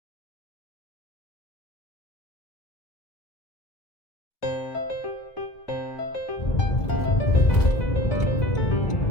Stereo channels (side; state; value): right; late; 1.9 ms